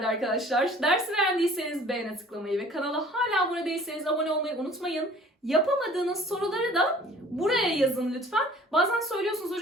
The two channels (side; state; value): both; normal; correlation 0.50